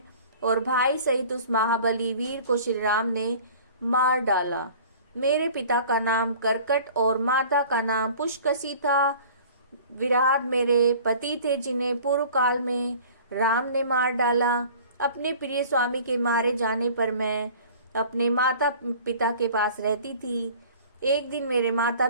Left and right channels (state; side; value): inverted; both; correlation -0.45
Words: और भाई सहित उस महाबली वीर को श्री राम ने मार डाला। मेरे पिता का नाम करकट और माता का नाम पुष्कसी था। विराट मेरे पति थे जिन्हें पूर्व काल में राम ने मार डाला। अपने प्रिय स्वामी के मारे जाने पर मैं अपने माता पिता के पास रहती थी। एक दिन मेरे माता